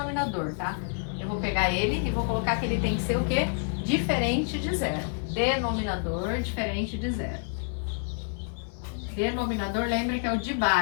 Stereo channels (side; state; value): right; silent; 57 dB below the other